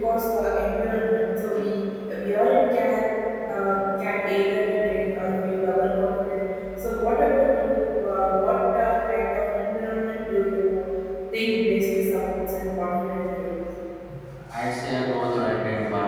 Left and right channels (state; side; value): identical; both; correlation 1.00